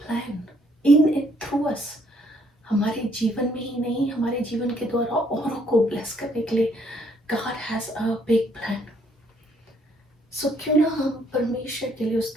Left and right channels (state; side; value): normal; both; correlation 0.67